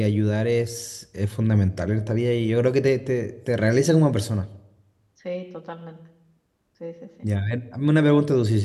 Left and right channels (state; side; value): identical; both; correlation 1.00